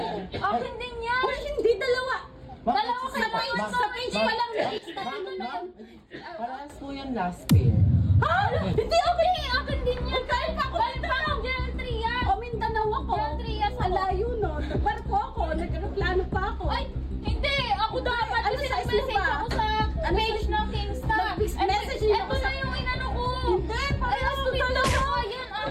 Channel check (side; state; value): both; identical; correlation 1.00